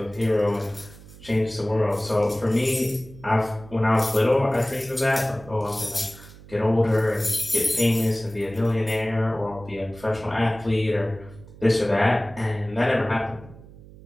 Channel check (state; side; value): noise; right; hum, 20 dB below the sound